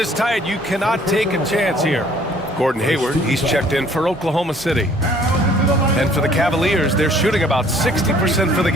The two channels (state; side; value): normal; both; correlation 0.58